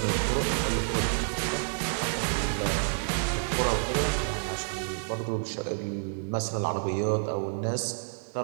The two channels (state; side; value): silent; left; digital silence